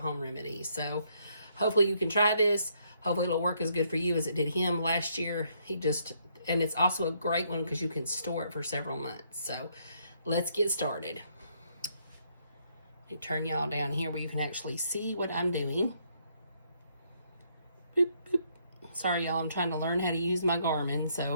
remedy. So hopefully you can try this. Hopefully it'll work as good for you as it did him last year. And it's also a great one because you can store it for several months. So let's get started. Let me turn y'all down here where you can actually see what I'm doing. Boop, boop. Sorry y'all, I'm trying to learn how to use my Garmin,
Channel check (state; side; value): inverted; both; correlation -0.71